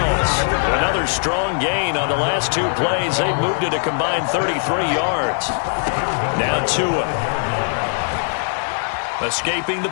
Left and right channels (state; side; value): silent; right; digital silence